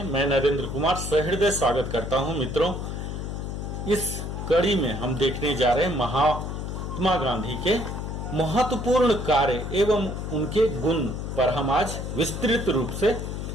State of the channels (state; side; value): noise; left; hum, 5 dB below the sound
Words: मैं नरेंद्र कुमार सहृदय स्वागत करता हूं। मित्रों, इस कड़ी में हम देखने जा रहे हैं महात्मा गांधी के महत्वपूर्ण कार्य एवं उनके गुण पर हम आज विस्तृत रूप से